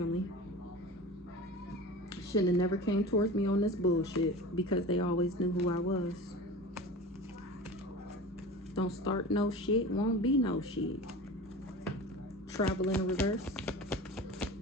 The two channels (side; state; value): both; normal; correlation 0.34